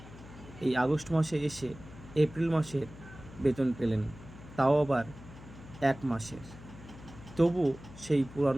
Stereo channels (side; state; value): left; noise; hum, 17 dB below the sound